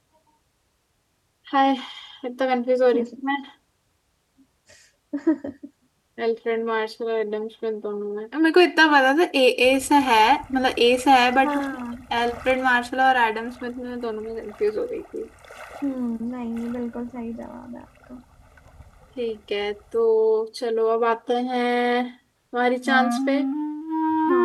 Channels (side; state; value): both; identical; correlation 1.00